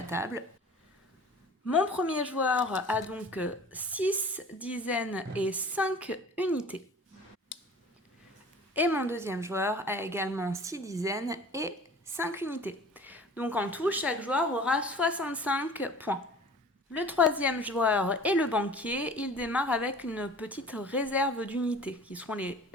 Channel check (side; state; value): both; normal; correlation 0.44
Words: table. Mon premier joueur a donc 6 dizaines et 5 unités. Et mon deuxième joueur a également 6 dizaines et 5 unités. Donc en tout, chaque joueur aura 65 points. Le troisième joueur est le banquier. Il démarre avec une petite réserve d'unités, qui seront les